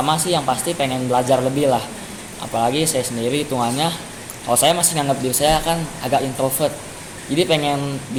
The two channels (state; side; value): identical; both; correlation 1.00